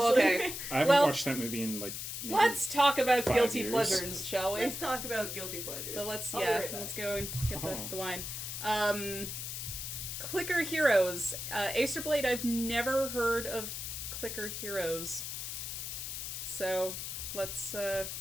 honestly. okay. I haven't Well- watched that movie in like. Maybe Let's talk about 5 guilty years. pleasures, shall we? Let's talk about guilty pleasures. But let's, I'll be right back. let's go and get Oh. the wine. Clicker Heroes. Acerblade, I've never heard of Clicker Heroes. So, let's, Yeah,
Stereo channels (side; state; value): left; noise; hiss, 5 dB below the sound